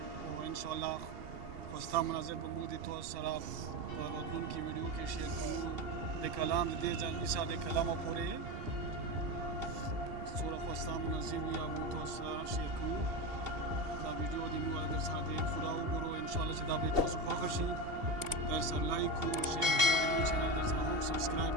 او انشاءالله خوستا مناظر به موږ د تاسو سره په راتلونکي ویډیو کې شیر کوو د کلام د دې ځانګړي ساده کلامو پورې څومره خوستا مناظر وي هغه تاسو سره شیر کوو دا ویډیو د موږ در سره د پوره وګورو انشاءالله چې دا به تاسو خوښ شي در سره لایک کو شیر کو د چینل در سره هم سبسکرایب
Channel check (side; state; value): left; late; 2.7 ms